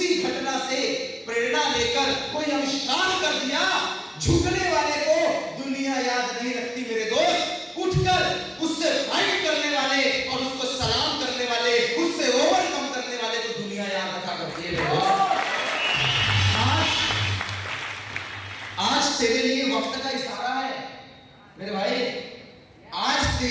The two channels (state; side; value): identical; both; correlation 1.00